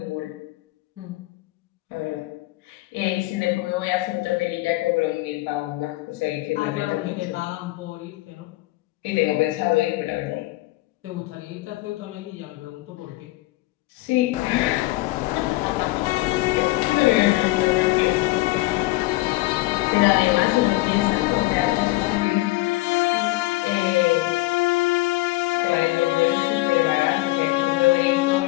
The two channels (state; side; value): quieter; right; 19.9 dB